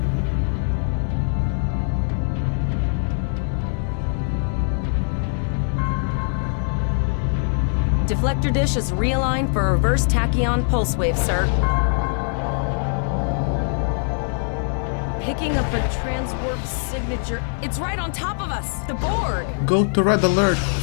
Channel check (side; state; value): right; silent; digital silence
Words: Deflector dish is realigned for a reverse tachyon pulse wave, sir. Picking up a transwarp signature. It's right on top of us! The Borg! Go to red alert.